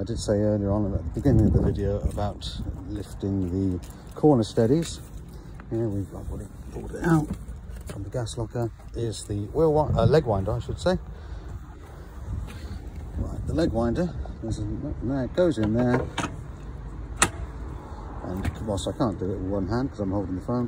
did say earlier on at the beginning of the video about lifting the corner steadies. Here I've already pulled it out from the gas locker. Is the leg winder, I should say. Right, the leg winder it goes in there, and whilst I can't do it with one hand because I'm holding the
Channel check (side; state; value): both; identical; correlation 1.00